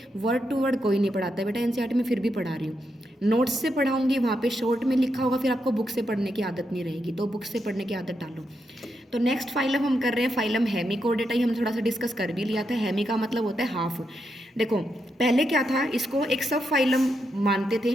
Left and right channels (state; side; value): normal; both; correlation 0.83